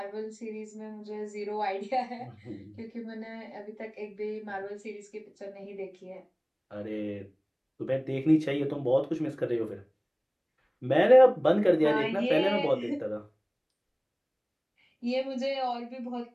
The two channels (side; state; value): both; identical; correlation 1.00